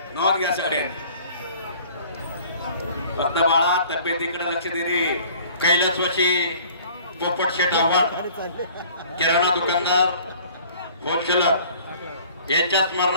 नोंद घ्या सगळ्यांनी. बाळा तब्येतीकडे लक्ष दे रे. कैलासवासी पोपट शेठ आव्हाड, किराणा दुकानदार होलसेलर यांच्या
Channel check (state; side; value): inverted; both; correlation -0.51